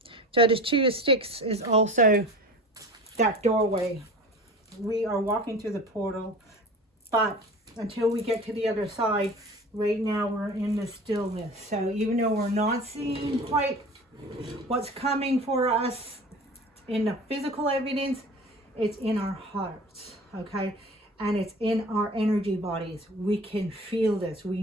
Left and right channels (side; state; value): both; normal; correlation 0.37